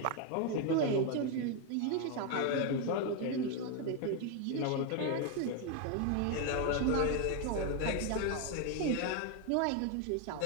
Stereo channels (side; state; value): both; different; correlation 0.01